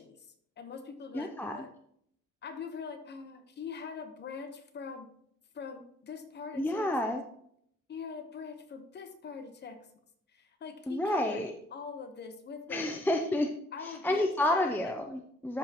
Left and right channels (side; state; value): both; normal; correlation 0.64